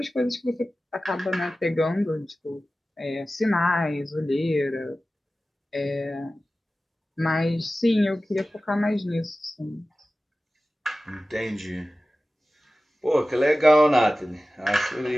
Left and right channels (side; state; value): both; normal; correlation 0.96